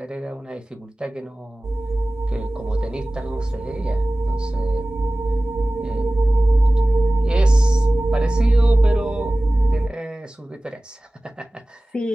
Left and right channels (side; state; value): both; normal; correlation 0.97